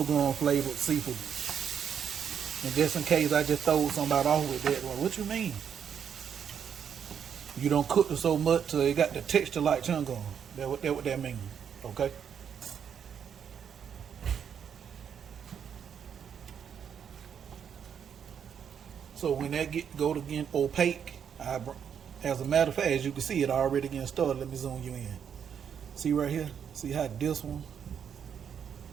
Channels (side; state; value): left; quieter; 7.9 dB